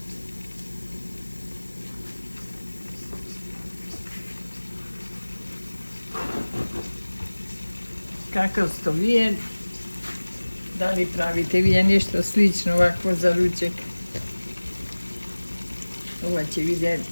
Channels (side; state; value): both; inverted; correlation -1.00